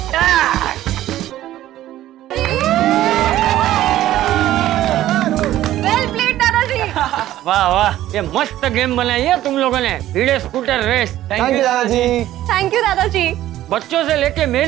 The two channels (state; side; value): quieter; left; 13.8 dB